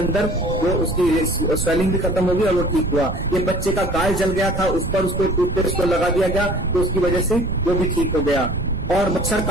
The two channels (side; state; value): right; noise; rumble, 5 dB below the sound